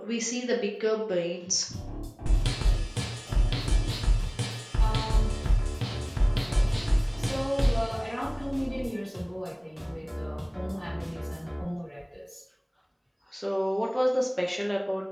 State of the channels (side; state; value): both; identical; correlation 1.00